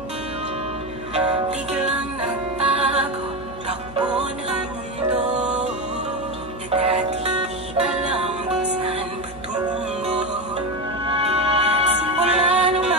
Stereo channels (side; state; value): right; noise; hum, 18 dB below the sound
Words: Biglang nagbago, takbo ng mundo. Dati